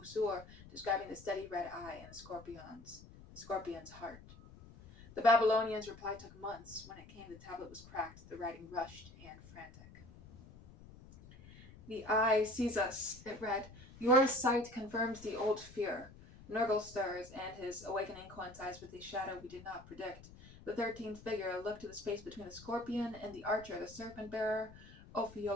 describing the steady red eye and the scorpion's heart. The Babylonians' reply took months. When it came, the tablet was cracked, the writing rushed and frantic. The eye sees us, it read. Your sight confirms the old fear. Nurgle stirs, and his awakening coincides with a shadow we did not predict. The 13th figure looked to the space between the scorpion and the archer, the serpent-bearer,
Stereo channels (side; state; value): left; noise; rumble, 19 dB below the sound